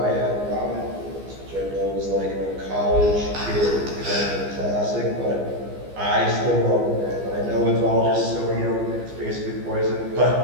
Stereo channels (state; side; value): late; left; 15 ms